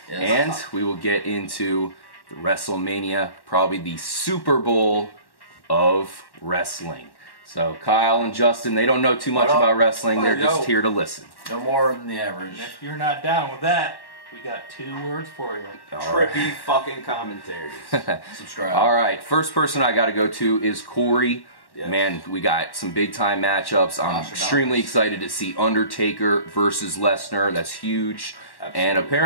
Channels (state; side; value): late; right; 1.1 ms